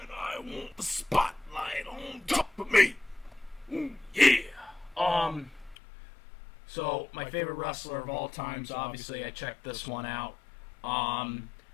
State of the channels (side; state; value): right; drops out; at 5.8 s